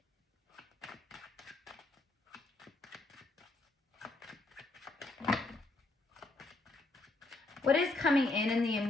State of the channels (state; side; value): quieter; right; 3.1 dB